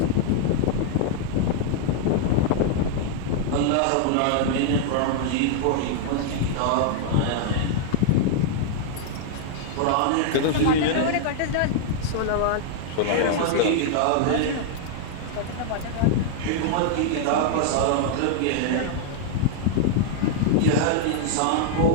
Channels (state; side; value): different; both; correlation 0.00